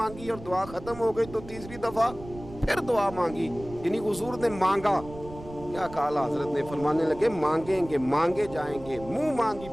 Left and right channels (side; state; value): right; noise; rumble, 15 dB below the sound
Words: और दुआ खत्म हो गई तो तीसरी दफा फिर दुआ मांगी, यानी हुजूर ने मांगा। क्या कहा हजरत ने, फरमाने लगे मांगेंगे मांगे जाएंगे, मुंह मांगी